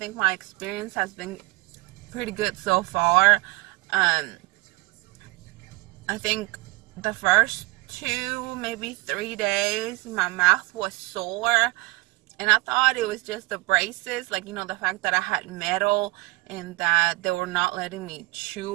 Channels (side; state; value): left; quieter; 22.5 dB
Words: my experience has been pretty good so far. I think the first 2, maybe 3 days my mouth was sore, and I thought it was just the braces, like, the fact that I had metal and that they were not letting me